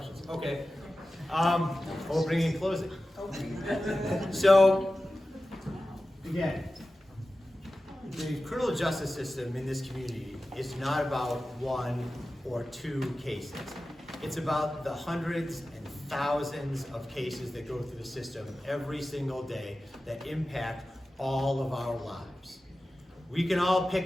Okay. Opening and closing. So, Again, the criminal justice system in this community is not about one or two cases. It's about the hundreds and thousands of cases that go through the system every single day that impact all of our lives. We can all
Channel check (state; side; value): normal; both; correlation 0.95